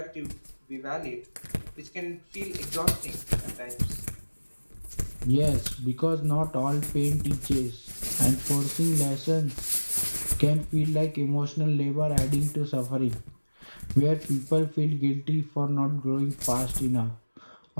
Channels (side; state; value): both; inverted; correlation -1.00